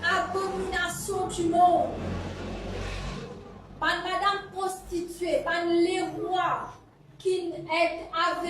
abomination du monde. Pas une madame prostituée, pas les rois qui est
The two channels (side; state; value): both; identical; correlation 1.00